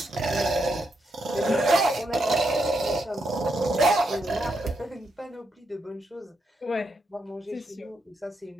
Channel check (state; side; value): normal; both; correlation 0.81